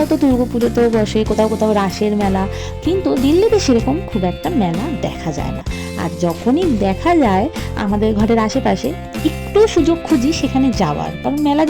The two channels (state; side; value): identical; both; correlation 1.00